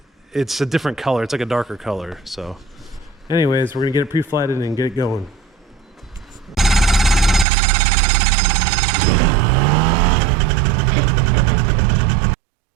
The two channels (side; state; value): left; drops out; at 7.5 s